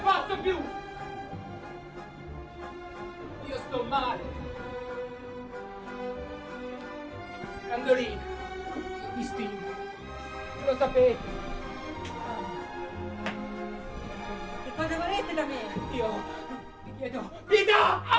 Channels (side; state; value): both; identical; correlation 1.00